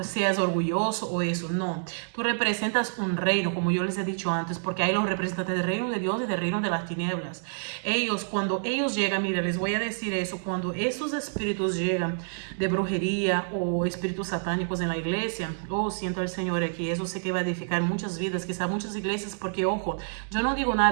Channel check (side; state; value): left; silent; digital silence